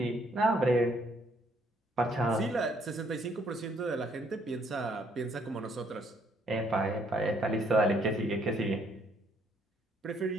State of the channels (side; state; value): both; normal; correlation 0.67